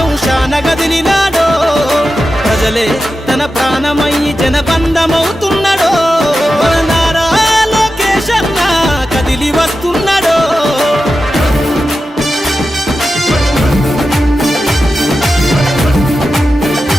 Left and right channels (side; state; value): both; normal; correlation 0.91